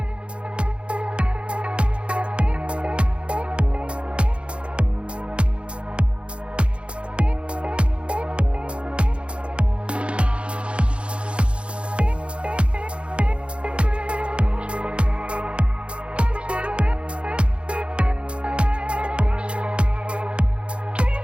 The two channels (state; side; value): late; left; 0.058 ms